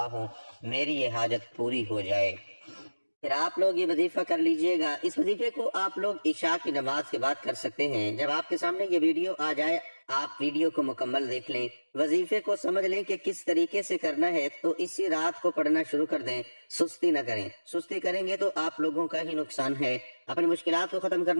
ہوں، میری یہ حاجت پوری ہو جائے۔ پھر آپ لوگ یہ وظیفہ کر لیجئے گا۔ اس وظیفے کو آپ لوگ عشاء کی نماز کے بعد کر سکتے ہیں۔ جب آپ کے سامنے یہ ویڈیو آ جائے، آپ ویڈیو کو مکمل دیکھ لیں، وظیفے کو سمجھ لیں کہ کس طریقے سے کرنا ہے، تو اسی رات کو پڑھنا شروع کر دیں، سستی نہ کریں۔ سستی کریں گے تو آپ لوگوں کا ہی نقصان ہے۔ اپنی مشکلات کو ختم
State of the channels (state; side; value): inverted; both; correlation -1.00